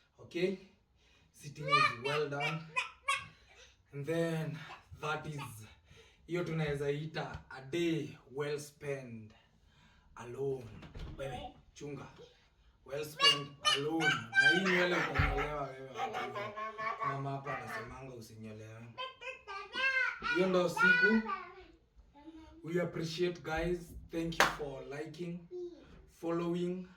Okay? Sitting is well done. And then that is, hiyo tunaweza ita a day well spent alone. Wewe chunga. Well spent alone. Na hii nywele utanyolewa wewe. Mama hapa anasemanga usinyolewe. Hiyo ndo siku. We appreciate guys. Thank you for liking, following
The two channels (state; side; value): identical; both; correlation 1.00